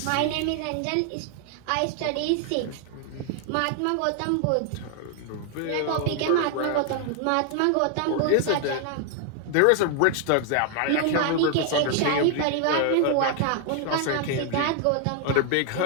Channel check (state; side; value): different; both; correlation 0.00